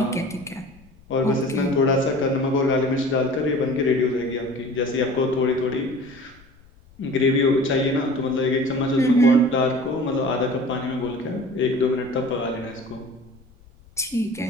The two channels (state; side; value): noise; left; rumble, 26 dB below the sound